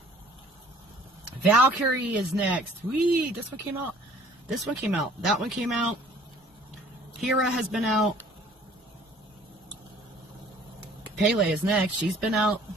Valkyrie is next. Whee! This one came out. This one came out. That one came out. Hera has been out. Pele is next. She's been out.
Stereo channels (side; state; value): both; normal; correlation 0.54